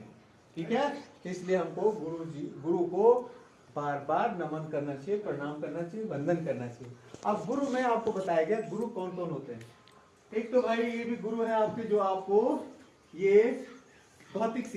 ठीक है. इसलिए हमको गुरु को बार बार नमन करना चाहिए, प्रणाम करना चाहिए, वंदन करना चाहिए. अब गुरु में आपको बताया गया गुरु कौन कौन होते हैं. एक तो भाई ये भी गुरु है आपके, जो आपको ये भौतिक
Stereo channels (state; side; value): identical; both; correlation 1.00